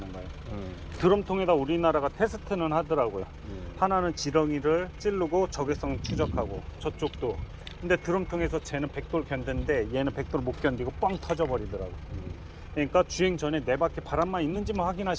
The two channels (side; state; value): both; identical; correlation 1.00